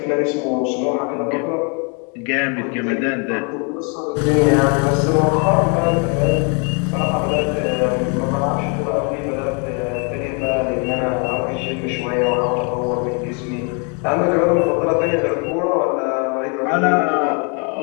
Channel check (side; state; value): right; quieter; 36.8 dB